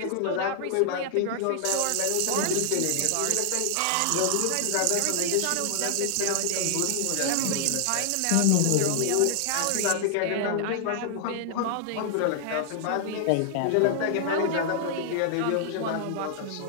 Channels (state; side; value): different; both; correlation 0.00